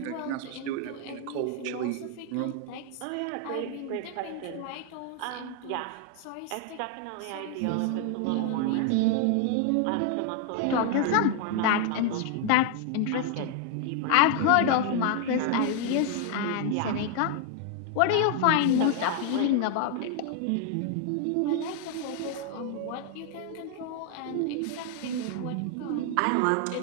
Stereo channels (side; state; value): both; different; correlation 0.00